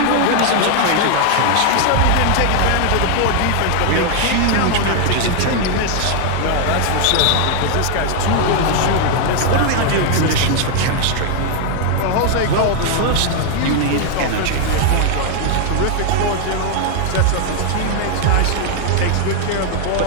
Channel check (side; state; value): both; different; correlation 0.00